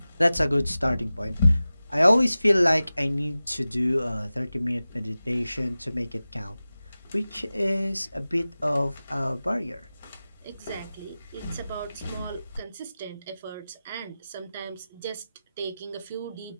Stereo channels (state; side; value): inverted; both; correlation -0.96